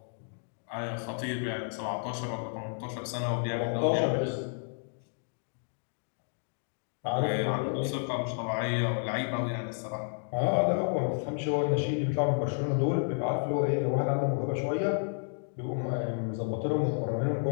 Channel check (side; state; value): right; silent; digital silence